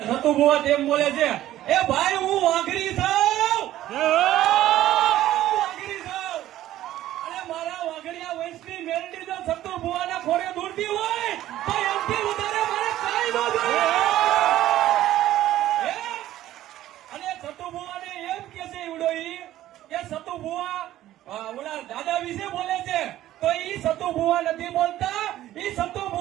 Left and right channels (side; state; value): left; quieter; 13.7 dB